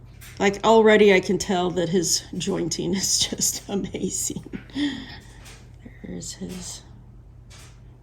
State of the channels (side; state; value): both; identical; correlation 1.00